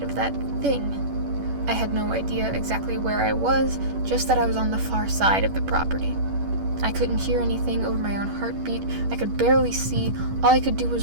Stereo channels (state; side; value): late; left; 11 ms